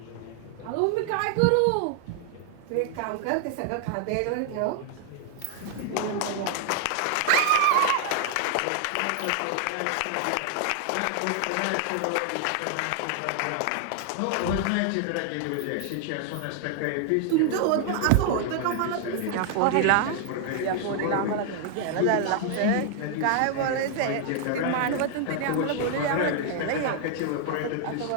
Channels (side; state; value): both; different; correlation -0.01